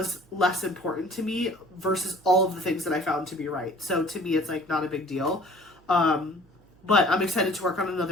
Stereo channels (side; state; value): right; noise; hum, 30 dB below the sound